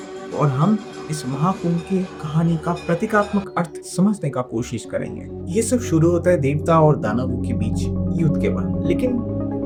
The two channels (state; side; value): identical; both; correlation 1.00